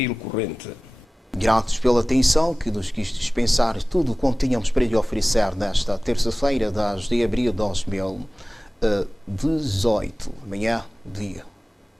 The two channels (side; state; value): both; normal; correlation 0.98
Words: corrente. Gratos pela atenção que nos quis dispensar tudo quanto tínhamos para lhe oferecer nesta terça-feira, 10 de abril de 2018. Amanhã, dia